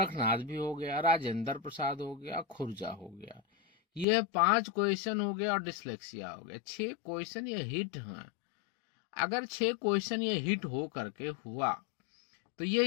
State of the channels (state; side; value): drops out; right; at 4.0 s